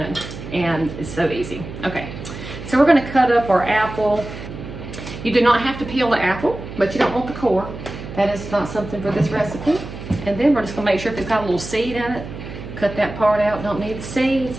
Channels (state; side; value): noise; right; hum, 11 dB below the sound